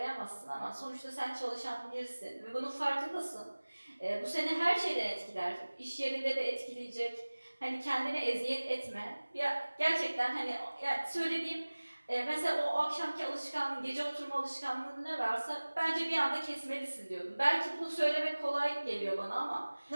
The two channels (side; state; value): both; inverted; correlation -1.00